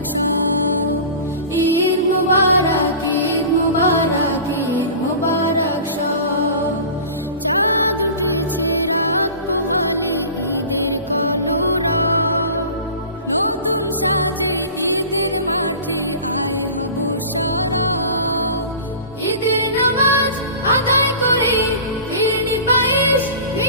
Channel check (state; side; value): inverted; both; correlation -0.38